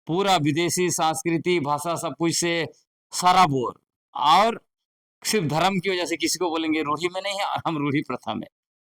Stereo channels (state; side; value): identical; both; correlation 1.00